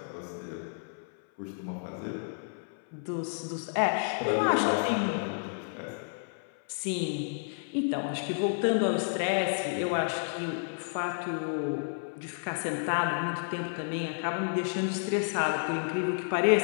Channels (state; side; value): silent; right; 56 dB below the other